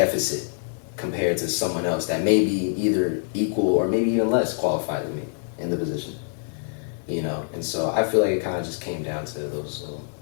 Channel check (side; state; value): right; silent; 62 dB below the other